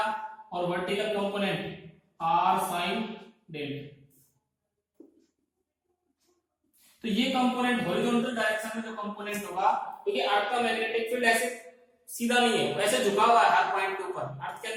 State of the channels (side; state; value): both; identical; correlation 1.00